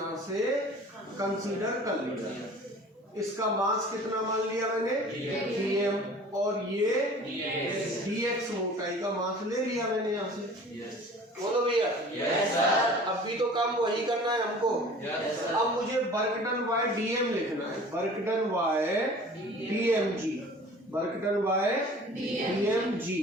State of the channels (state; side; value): normal; both; correlation 0.45